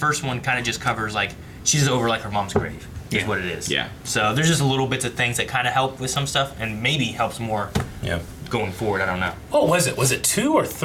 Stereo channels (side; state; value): both; identical; correlation 1.00